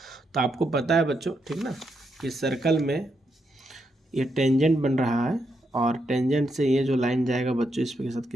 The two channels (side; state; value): both; normal; correlation 0.81